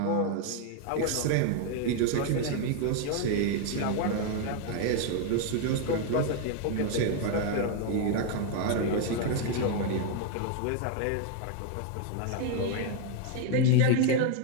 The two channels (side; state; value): both; different; correlation 0.00